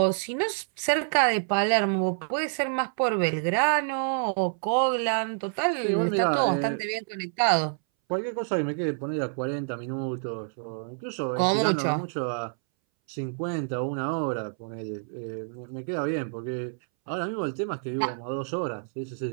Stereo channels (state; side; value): silent; left; 60 dB below the other